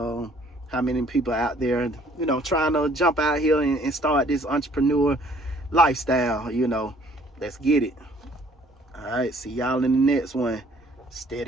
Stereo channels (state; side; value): normal; both; correlation 0.59